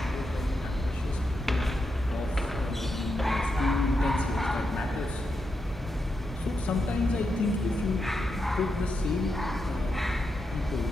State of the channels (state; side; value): normal; both; correlation 0.85